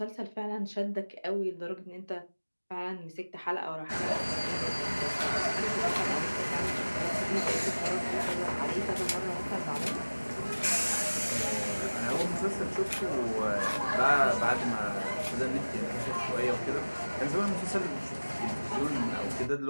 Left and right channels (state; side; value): inverted; both; correlation -1.00